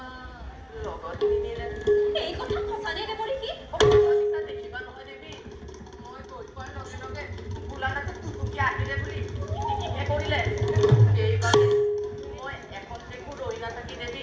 লগত নিনিলে। এই কথা সঁচানে দেৱঋষি? সঁচা দেখিবা নহয় দেৱী, মই গৈ পোৱাৰ লগে লগে বোলানাথে টুটুকি আহিলে বুলি কিটিকিহে কৰিলে। সেইবাবে মই এখন দেখো ৰৈ নাথাকি দেৱী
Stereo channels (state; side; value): identical; both; correlation 1.00